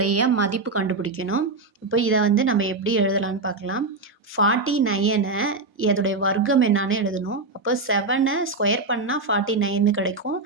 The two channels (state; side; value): quieter; left; 3.5 dB